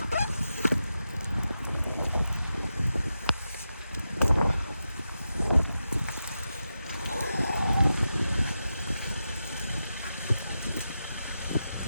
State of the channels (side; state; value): both; inverted; correlation -0.89